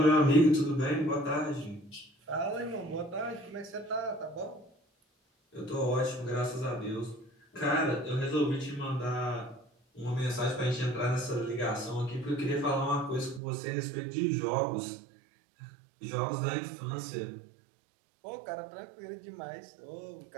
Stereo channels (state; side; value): drops out; left; at 13.4 s